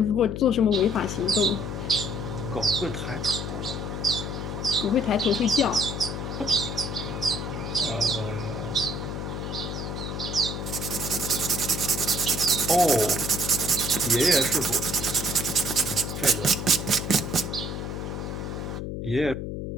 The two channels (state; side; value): noise; left; hum, 5 dB below the sound